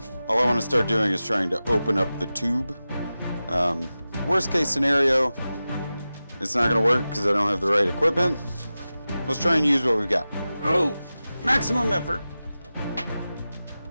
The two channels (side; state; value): both; inverted; correlation -0.95